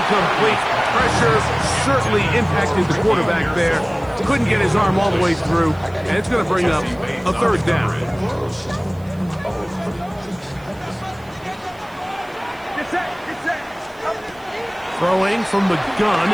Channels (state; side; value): noise; right; hiss, 29 dB below the sound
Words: Pressure certainly impacted the quarterback there. Couldn't get his arm all the way through. And it's going to bring up a third down. Throwing from the gun